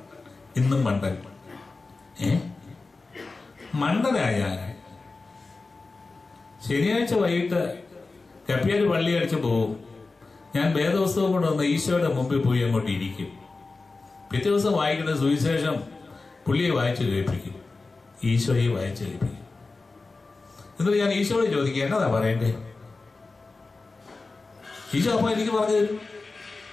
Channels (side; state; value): right; quieter; 3.7 dB